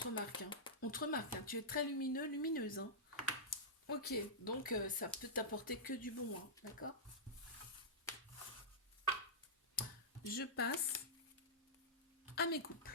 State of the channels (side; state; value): both; normal; correlation -0.12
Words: remarque, hein. On te remarque, hein. Tu es très lumineux, lumineuse, hein. Ok, donc ça peut t'apporter que du bon, hein. D'accord? Je passe à mes couples.